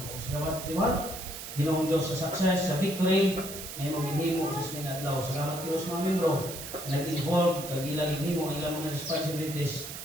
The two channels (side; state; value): right; noise; hiss, 9 dB below the sound